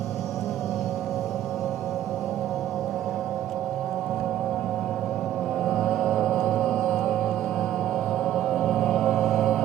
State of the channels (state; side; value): quieter; left; 12.3 dB